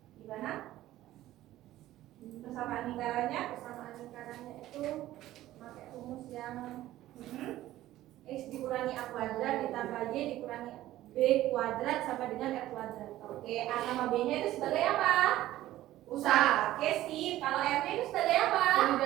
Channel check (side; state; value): left; quieter; 14.7 dB